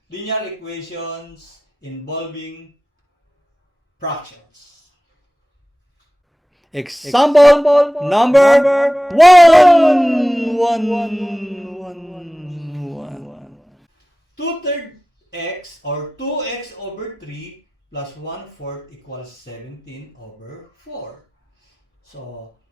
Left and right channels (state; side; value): normal; both; correlation 0.95